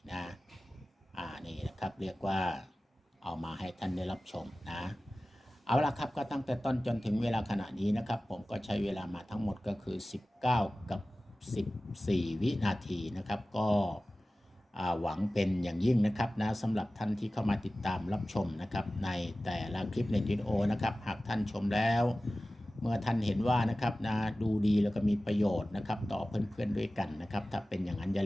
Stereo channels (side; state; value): both; normal; correlation 0.96